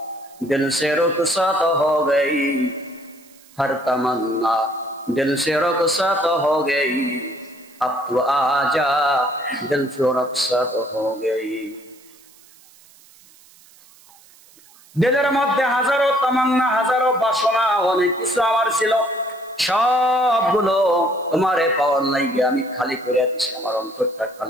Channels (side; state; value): right; noise; hiss, 26 dB below the sound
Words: দিল সে রুখসাত হো গই, হর তামান্না দিল সে রুখসাত হো গই, अब तो आजा दिल से रखसत हो गई। দিলের মধ্যে হাজারো তামান্না, হাজারো বাসনা, অনেক কিছু আমার ছিল, সবগুলো তোমারে পাওয়ার লাইগে আমি খালি করে দিছি, আমার অন্তরটা